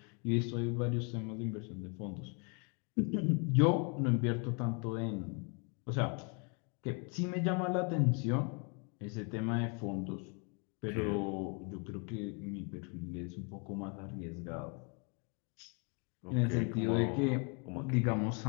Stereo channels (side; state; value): right; quieter; 35.9 dB